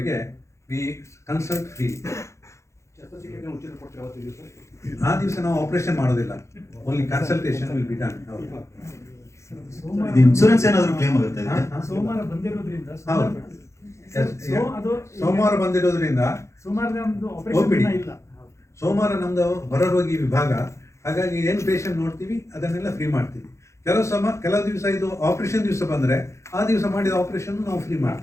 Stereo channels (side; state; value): right; late; 0.14 ms